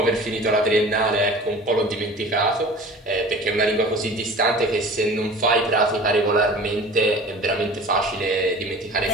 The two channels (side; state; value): both; normal; correlation 0.42